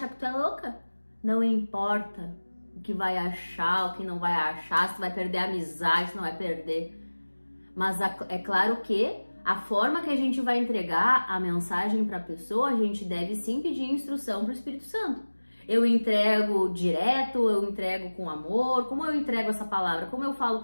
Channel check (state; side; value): inverted; both; correlation -1.00